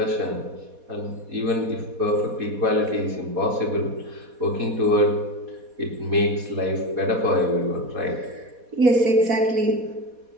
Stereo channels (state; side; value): late; left; 4.2 ms